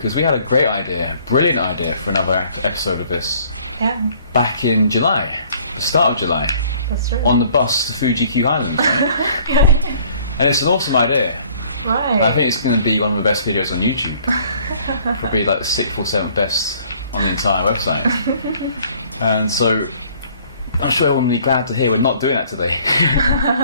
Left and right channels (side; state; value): both; inverted; correlation -0.58